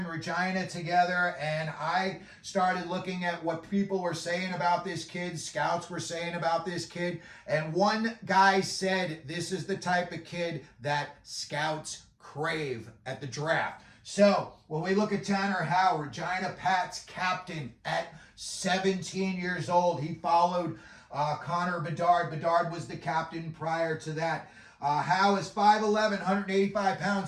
Regina together, and I started looking at what people were saying about this kid, scouts were saying about this kid, and one guy said this is the type of kid that scouts crave at the draft. So when we look at Tanner Howe, Regina Pat's captain at 17 years old, he followed Connor Bedard. Bedard was the captain prior to that. Howe is 5'11", 185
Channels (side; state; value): both; identical; correlation 1.00